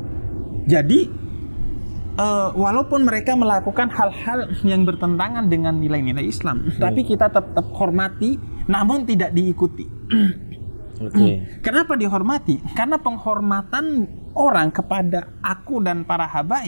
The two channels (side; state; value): both; inverted; correlation -1.00